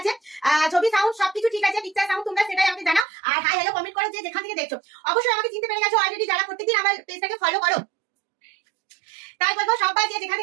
ছবি সাউন্ড সবকিছু ঠিক আছে, পিকচার সাউন্ড তোমরা সেটাই আমাকে জানাও, আর হাই হ্যালো কমেন্ট করো যে যেখান থেকে দেখছো। অবশ্যই আমাকে চিনতে পেরে গেছো অলরেডি যারা প্রত্যেকদিন আমার পেজটাকে ফলো করো। তাই বলবো সবাই যে যেখান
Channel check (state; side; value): drops out; left; at 3.1 s